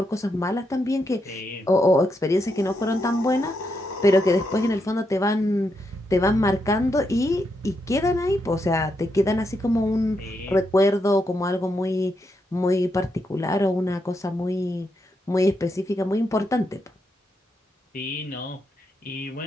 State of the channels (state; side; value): normal; both; correlation 0.82